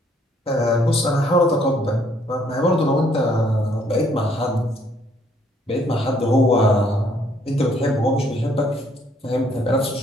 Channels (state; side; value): normal; both; correlation 0.66